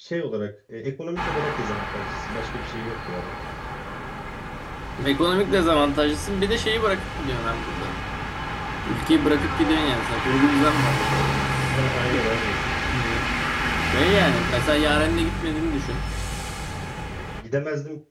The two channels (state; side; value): identical; both; correlation 1.00